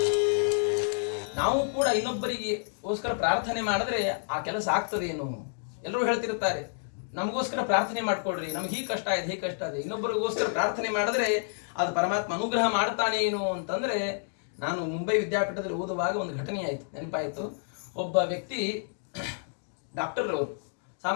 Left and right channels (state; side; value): silent; right; digital silence